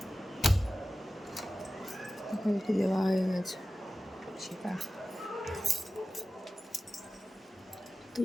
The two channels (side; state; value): both; normal; correlation 0.95